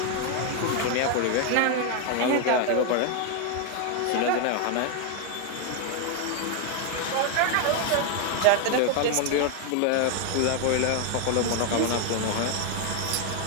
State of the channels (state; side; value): different; both; correlation 0.01